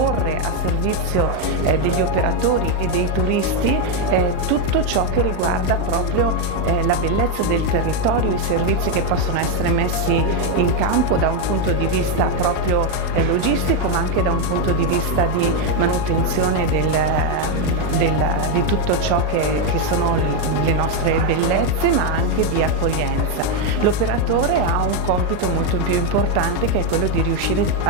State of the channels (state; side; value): late; left; 39 ms